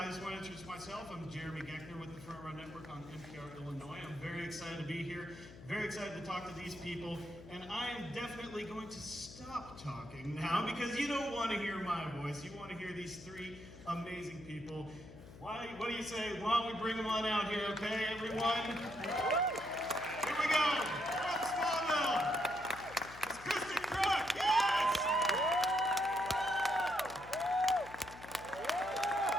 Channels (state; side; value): noise; left; hum, 16 dB below the sound